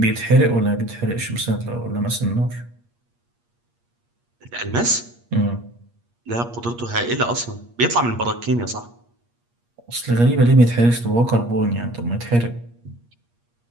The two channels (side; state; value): left; late; 8.5 ms